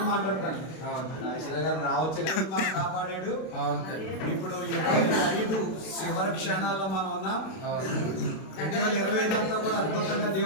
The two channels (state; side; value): late; right; 32 ms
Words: మాట్లాడతాను. ఈశ్వర గారు రావచ్చు కానీ మనం కాపాడాడు. ఇప్పుడు 25 చివరి క్షణాల్లో మనం ఉన్నాం. 2025 అంతా కూడా అద్భుతంగా